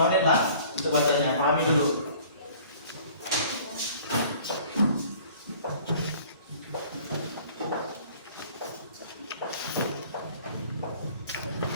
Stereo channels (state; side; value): inverted; both; correlation -0.51